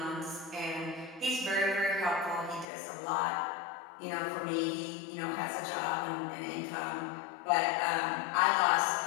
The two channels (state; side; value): drops out; right; at 2.7 s